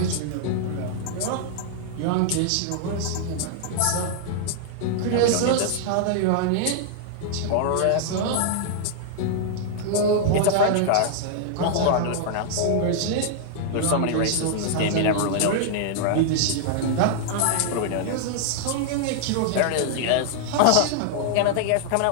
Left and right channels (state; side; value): different; both; correlation -0.01